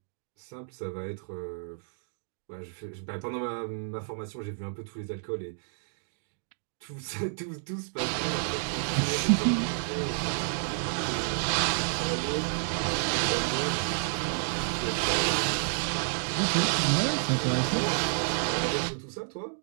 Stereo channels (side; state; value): left; silent; digital silence